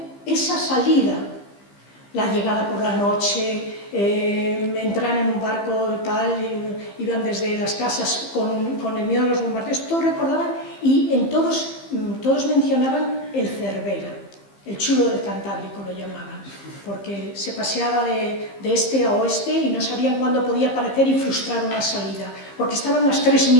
esa salida, la llegada por la noche, entrar en un barco tal, iban desde las casas con el miedo a los bombardeos, todos recordaban y en todos mencionaban el Cervera, el chulo del Cantábrico lo llamaban, porque se paseaba de este a oeste y no sabían cuándo podía aparecer y frustrar una salida, porque estaban las 3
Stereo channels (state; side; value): late; right; 15 ms